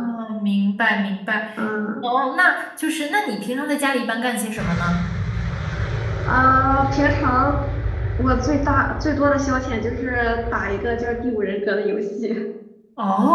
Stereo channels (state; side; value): identical; both; correlation 1.00